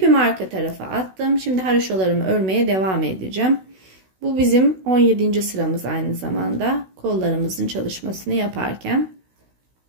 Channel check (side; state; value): left; late; 16 ms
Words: arka tarafa attım. Şimdi haroşalarımı örmeye devam edeceğim. Bu bizim 17. sıramız aynı zamanda kollarımızın çalışmasını yaparken.